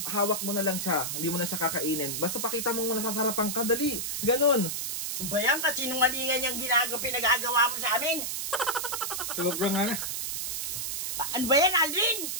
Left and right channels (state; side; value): noise; right; hiss, 2 dB below the sound